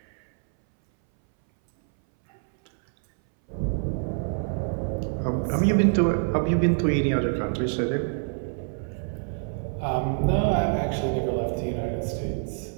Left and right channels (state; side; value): silent; left; 60 dB below the other